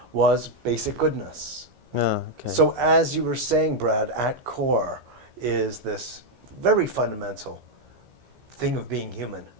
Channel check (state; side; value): late; left; 15 ms